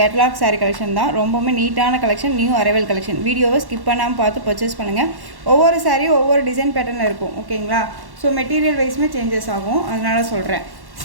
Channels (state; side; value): late; left; 1.1 ms